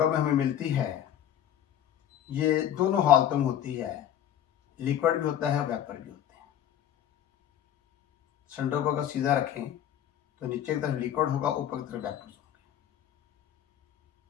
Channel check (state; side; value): quieter; right; 10.5 dB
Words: में हमें मिलती है, ये दोनों हालतों में होती है। लिक्विड भी होता है, वेपर भी होते हैं। सिलेंडर को अगर सीधा रखें तो नीचे की तरफ लिक्विड होगा, ऊपर की तरफ वेपर होंगे।